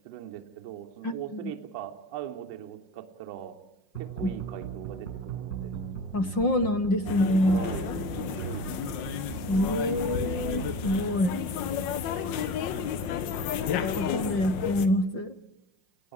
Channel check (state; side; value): late; right; 5.6 ms